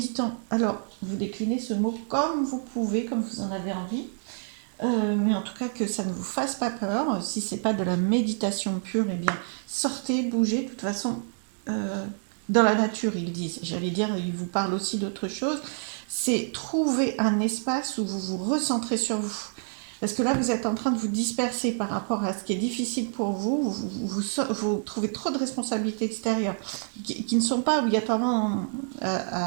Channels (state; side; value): silent; left; 60 dB below the other